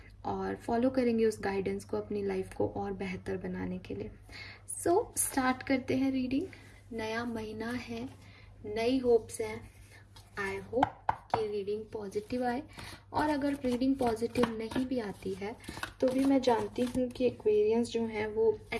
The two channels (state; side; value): identical; both; correlation 1.00